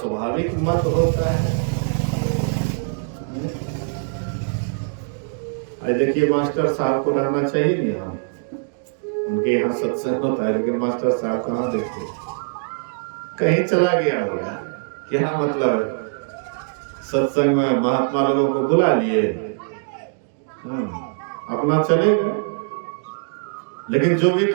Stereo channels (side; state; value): left; silent; digital silence